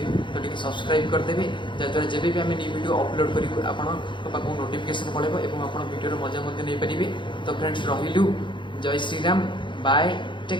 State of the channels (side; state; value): right; late; 0.23 ms